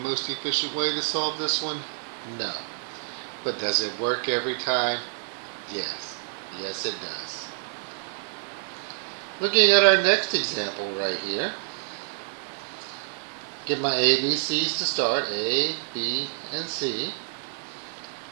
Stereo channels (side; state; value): left; silent; digital silence